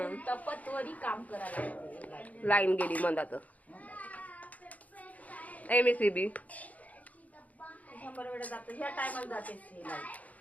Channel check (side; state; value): right; late; 0.073 ms